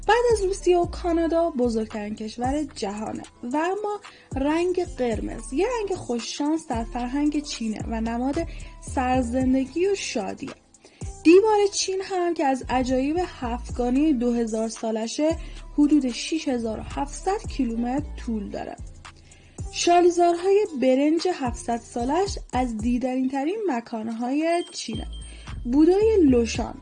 بعد از روسیه و کانادا بزرگترین کشور جهانه و اما رنگ قرمز یه رنگ خوششانس در فرهنگ چینه و نماد سرزندگی و شادیه. دیوار چین هم که از عجایب هفتگانی 2000 سالشه حدود 6700 کیلومتر طول داره. شالیزارهای برنج 700 سالش از دیدنی ترین مکانهای چینه. بودای لوشان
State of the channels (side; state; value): both; identical; correlation 1.00